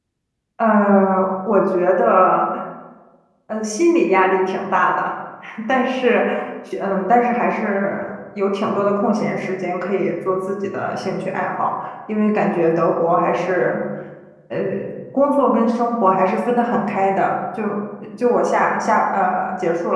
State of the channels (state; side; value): identical; both; correlation 1.00